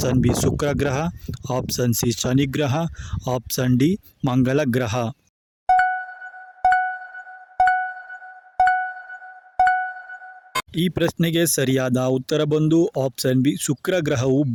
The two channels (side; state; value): both; identical; correlation 1.00